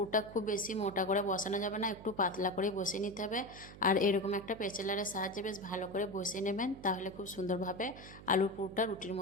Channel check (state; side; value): noise; right; hum, 16 dB below the sound